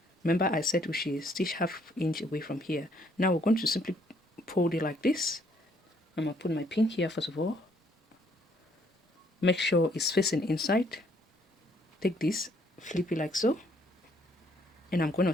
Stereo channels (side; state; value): both; normal; correlation 0.66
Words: Remember I said we should stitch ½ inch away from here. Now we're going to simply fold it like this. I'm going to put my pin here first of all. Make sure it's facing inside. Take this, flip it like so. And I'm going to